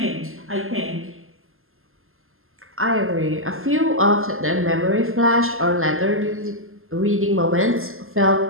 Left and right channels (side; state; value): left; late; 0.61 ms